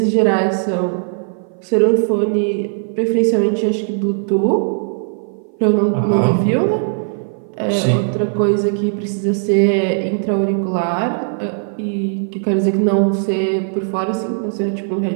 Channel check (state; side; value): silent; left; 57 dB below the other